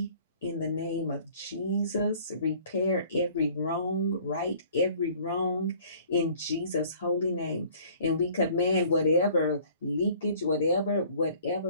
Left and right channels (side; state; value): both; inverted; correlation -0.53